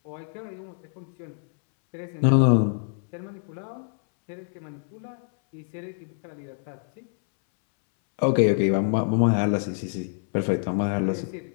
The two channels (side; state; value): right; silent; 61 dB below the other